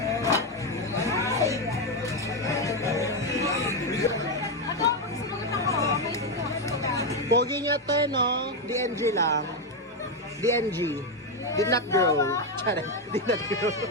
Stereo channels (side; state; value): both; normal; correlation 0.07